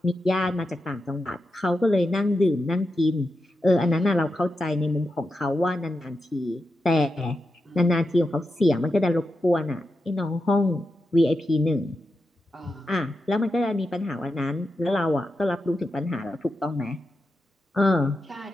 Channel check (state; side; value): normal; both; correlation 0.88